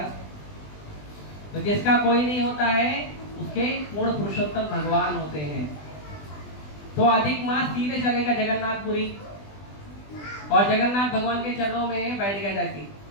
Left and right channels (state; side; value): late; right; 20 ms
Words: तो जिसका कोई नहीं होता है उसके पूर्ण पुरुषोत्तम भगवान होते हैं। तो अधिक मास सीधे चलेगा जगन्नाथपुरी और जगन्नाथ भगवान के चरणों में बैठ गया जाके,